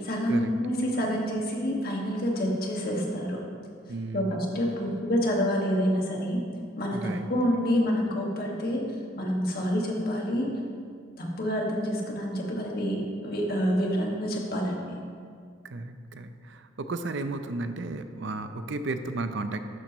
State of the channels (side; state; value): both; normal; correlation 0.67